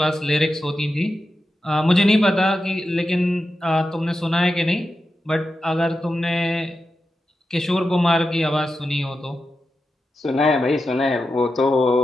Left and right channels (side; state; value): both; normal; correlation 0.90